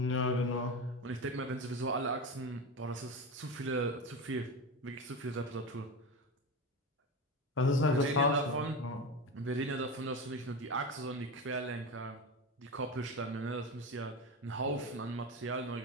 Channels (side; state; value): both; normal; correlation 0.22